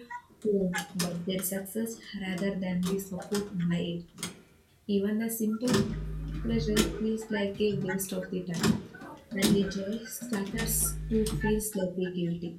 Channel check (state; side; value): identical; both; correlation 1.00